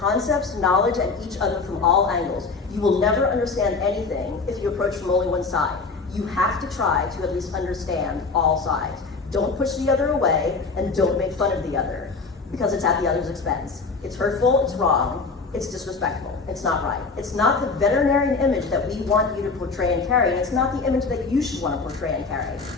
concepts, knowledge, and each other from all angles. You will never understand anything if you approach from only one side. You have to try to at least understand all sides. Don't push the other away, and don't make fun of the other, because it's at the other's expense. It's hurtful, it's wrong, it's disrespectful, it's not right. It's not the veterinarian image that we want you to portray and carry, and it's not the image that you should want to portray and carry.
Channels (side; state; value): right; quieter; 4.3 dB